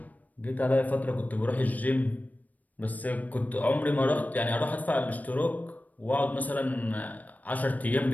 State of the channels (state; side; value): late; right; 0.077 ms